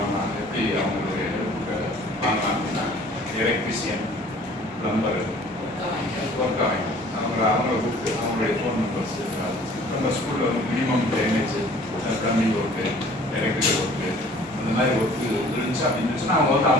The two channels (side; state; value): both; normal; correlation 0.52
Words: எப்படி அவங்களுடைய வாங்கலாம் அப்படின்னா எலக்ட்ரிஷியன், பிளம்பர், ஒர்க் ஆகும் அவங்கள கூப்பிட்டு அவங்களுடைய ஃபோன் நம்பர்ஸ் நம்ம ஸ்கூலில் வந்து minimum drainage, plumbing work, electrical work அந்த மாதிரி ஒர்க்கு இருந்துச்சு அப்படின்னு இருந்துச்சுன்னா அவங்க வந்து